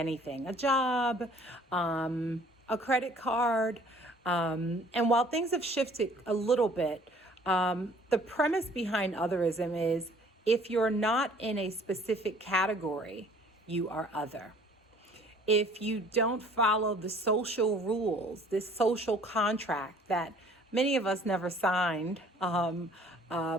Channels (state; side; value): normal; both; correlation 0.54